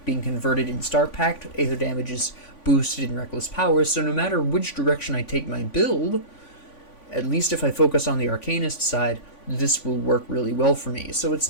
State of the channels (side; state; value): right; late; 3.5 ms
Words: being converted in Star Pact. Aether damage is boosted in Reckless Power. So no matter which direction I take my build, at least if I focus on the Arcanist side, this will work really well for me. So it's